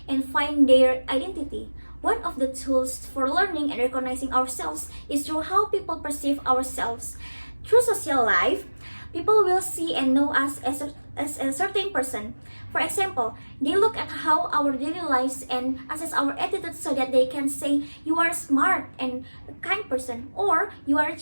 and find their identity. One of the tools for learning and recognizing ourselves is through how people perceive ourselves. Through social life, people will see and know us as a certain person. For example, they look at how our daily lives and assess our attitude so that they can say you are smart and a kind person, or you are a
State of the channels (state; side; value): inverted; both; correlation -1.00